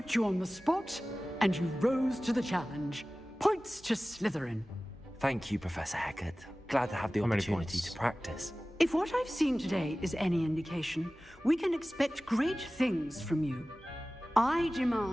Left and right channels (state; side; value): normal; both; correlation 0.97